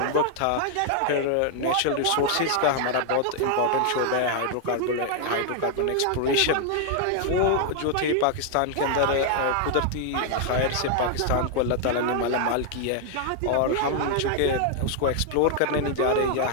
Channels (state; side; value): different; both; correlation 0.00